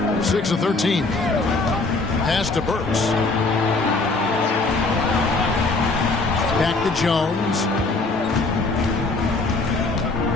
6 of 13. Pass to Burks. Back to Jones.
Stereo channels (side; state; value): right; quieter; 3.5 dB